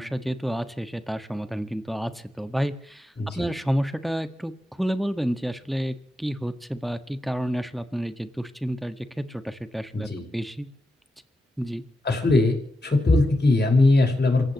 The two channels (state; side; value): normal; both; correlation 0.88